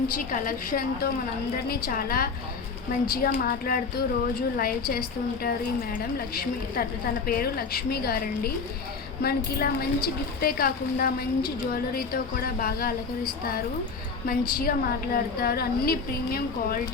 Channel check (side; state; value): right; quieter; 4.9 dB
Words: కలెక్షన్తో మనందరినీ చాలా మంచిగా మాట్లాడుతూ రోజు లైవ్ చేస్తూ ఉంటారు ఈ మేడం లక్ష్మి. తన పేరు లక్ష్మి గారండి. మనకి ఇలా మంచి గిఫ్టే కాకుండా మంచి జ్యువెలరీతో కూడా బాగా అలంకరిస్తారు, మంచిగా మాట్లాడతారు. అన్ని ప్రీమియం